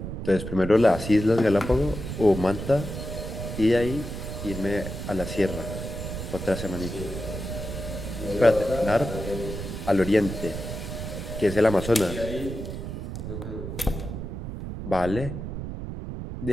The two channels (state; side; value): noise; right; rumble, 7 dB below the sound